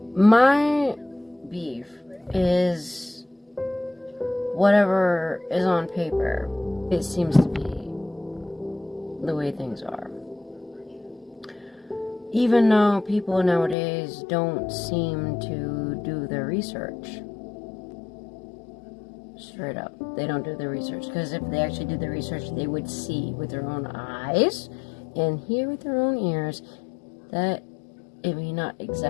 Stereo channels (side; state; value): right; drops out; at 13.8 s